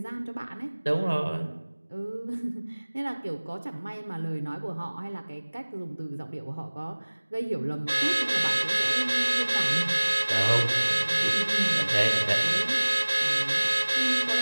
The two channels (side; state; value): both; inverted; correlation -1.00